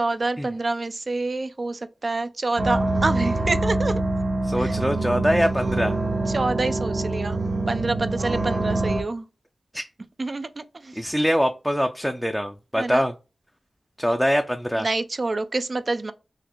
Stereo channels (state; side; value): normal; both; correlation 0.96